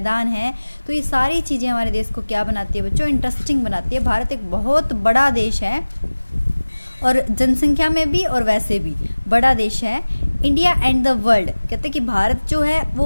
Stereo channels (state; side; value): inverted; both; correlation -1.00